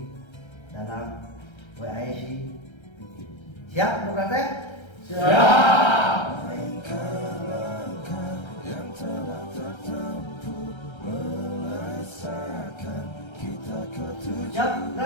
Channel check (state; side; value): late; right; 1.3 ms